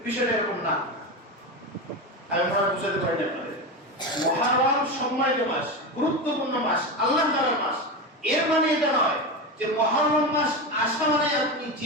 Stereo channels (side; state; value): both; normal; correlation 0.19